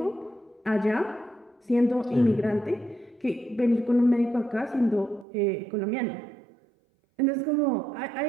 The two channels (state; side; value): drops out; left; at 5.2 s